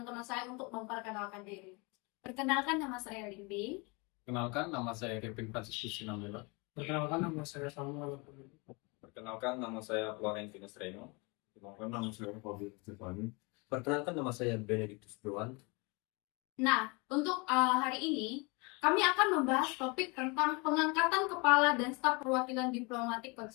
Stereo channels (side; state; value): right; quieter; 29.0 dB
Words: saya untuk memperkenalkan diri. Perkenalkan, nama saya Limbing. Kenalkan, nama saya Kevin Franciscus Sinambela. Perkenalkan, nama saya Samuel. Perkenalkan, nama saya Florentius Reno. Perkenalkan, nama saya Fabio Stefani. Perkenalkan, nama saya Benedictus Dewan. Nah, untuk hari ini, kami akan membahas topik tentang pengangkatan kepala dan staf perwakilan diplomatik